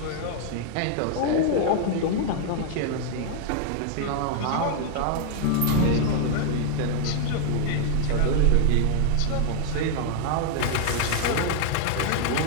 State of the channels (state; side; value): different; both; correlation 0.00